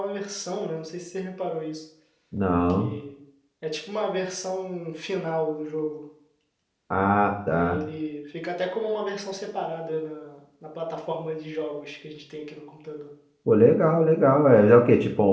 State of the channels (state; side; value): identical; both; correlation 1.00